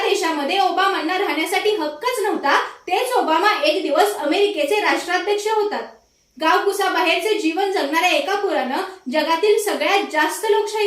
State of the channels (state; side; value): identical; both; correlation 1.00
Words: देशामध्ये ओबामांना राहण्यासाठी हक्कच नव्हता, तेच ओबामा एक दिवस अमेरिकेचे राष्ट्राध्यक्ष होतात. गावकुसाबाहेरचे जीवन जगणाऱ्या एका पोरानं जगातील सगळ्यात जास्त